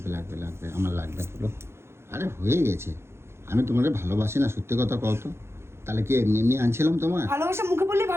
লাগবে লাগবে আমার লাগবে বলো। আরে হয়ে গেছে, আমি তোমাকে ভালোবাসি না, সত্যি কথা কও তো। তাহলে কি এমনি এমনি আনছিলাম তোমার? ভালোবাসা মুখে বললে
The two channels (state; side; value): late; left; 0.12 ms